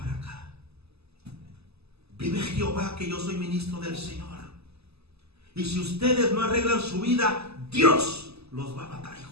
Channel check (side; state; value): left; late; 0.79 ms